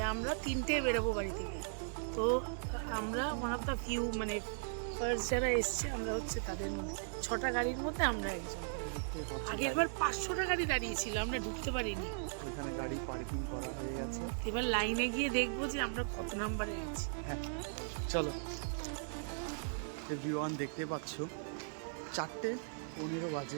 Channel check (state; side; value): silent; left; digital silence